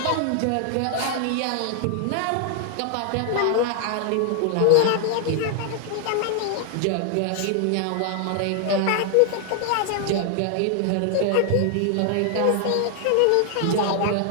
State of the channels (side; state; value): both; different; correlation 0.00